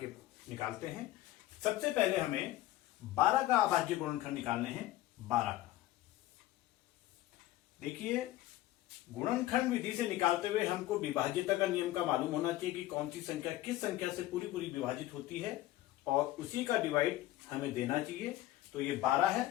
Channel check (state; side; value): quieter; right; 15.5 dB